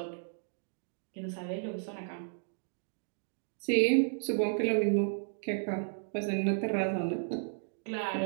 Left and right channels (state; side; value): silent; left; digital silence